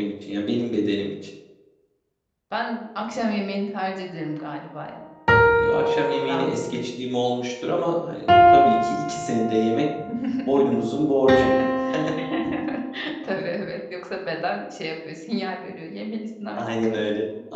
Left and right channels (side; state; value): both; identical; correlation 1.00